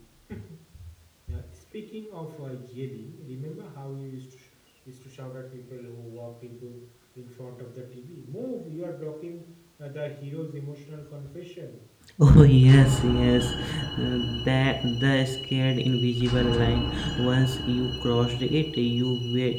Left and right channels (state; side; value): identical; both; correlation 1.00